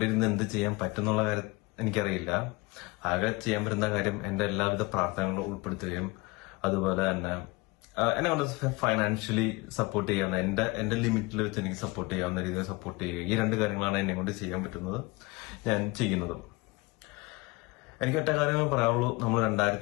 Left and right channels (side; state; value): right; quieter; 24.0 dB